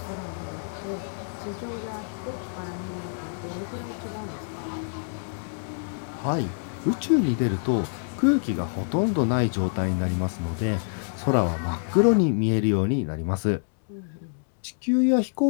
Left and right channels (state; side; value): silent; right; digital silence